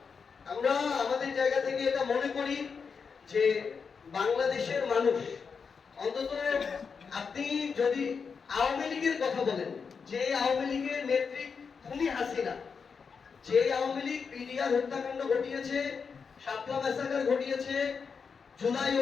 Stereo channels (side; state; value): right; quieter; 5.7 dB